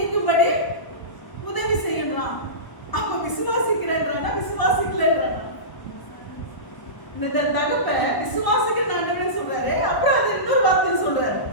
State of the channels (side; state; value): right; late; 1.0 ms